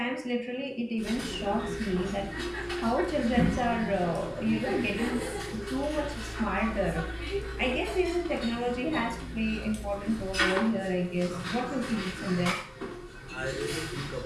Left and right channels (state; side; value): identical; both; correlation 1.00